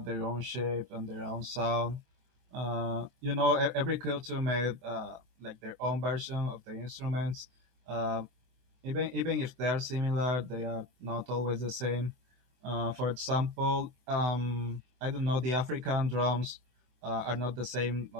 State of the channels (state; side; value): late; left; 24 ms